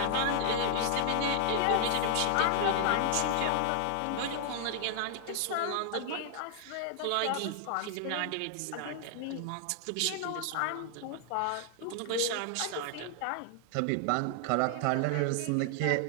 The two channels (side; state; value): both; different; correlation 0.00